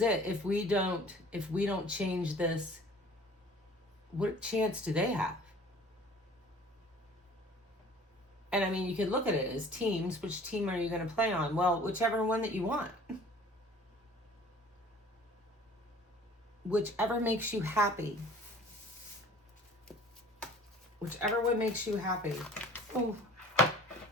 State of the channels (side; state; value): both; normal; correlation 0.49